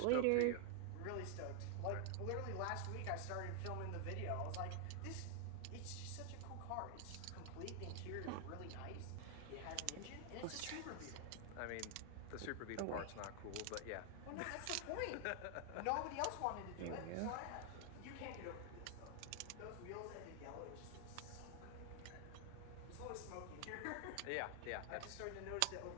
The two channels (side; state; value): both; different; correlation 0.00